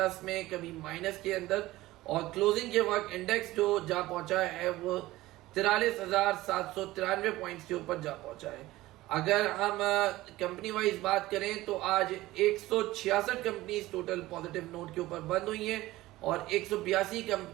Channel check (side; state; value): left; quieter; 17.5 dB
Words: में, कभी माइनस के अंदर, और क्लोजिंग के वक्त इंडेक्स जो जा पहुंचा है वो 43,793 पॉइंट्स के ऊपर जा पहुंचा है। अगर हम कंपनी वाइज बात करें तो आज 166 कंपनीज टोटल पॉजिटिव नोट के ऊपर बंद हुई हैं और 182